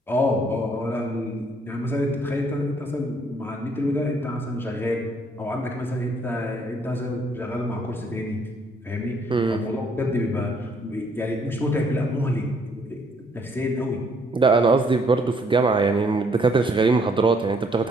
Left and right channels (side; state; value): both; normal; correlation 0.66